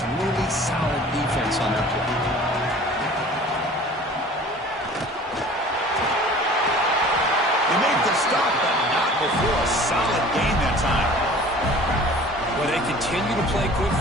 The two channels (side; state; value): both; normal; correlation 0.45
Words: really solid defense on that play. They make the stop, but not before a solid gain that time. Well, they continue to play good